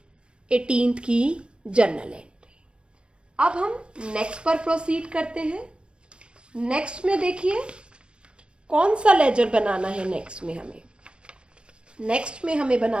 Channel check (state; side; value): late; left; 0.056 ms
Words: 18th की जर्नल एंट्री। अब हम नेक्स्ट पर प्रोसीड करते हैं। नेक्स्ट में देखिए कौन सा लेजर बनाना है नेक्स्ट में हमें